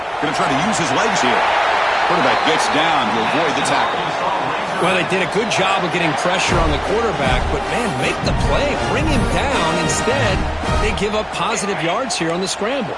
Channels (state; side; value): identical; both; correlation 1.00